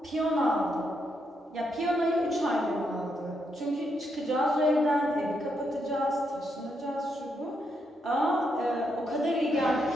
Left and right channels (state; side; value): normal; both; correlation 0.79